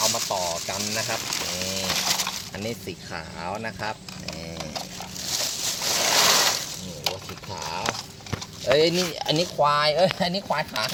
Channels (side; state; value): both; identical; correlation 1.00